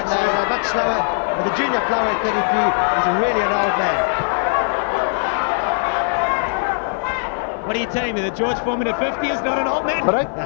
they're much slower. But the junior flyweight 33 is really an old man. What are you telling me, that George Foreman at 50 is not an old man? Break.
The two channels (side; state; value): right; silent; 63 dB below the other